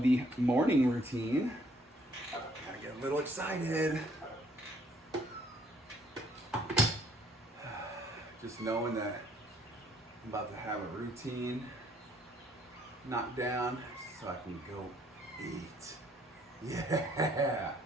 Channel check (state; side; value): normal; both; correlation 0.64